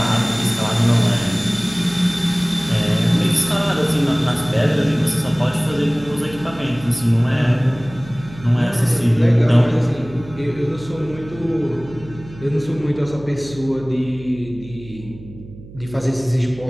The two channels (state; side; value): noise; right; hum, 17 dB below the sound